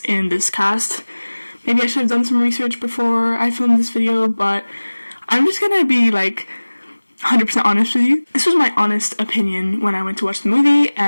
in this cast. Maybe I should have done some research before I filmed this video, but I'm just gonna be 100% honest with you. This was my honest opinion when I went to watch the movie,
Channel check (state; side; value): inverted; both; correlation -1.00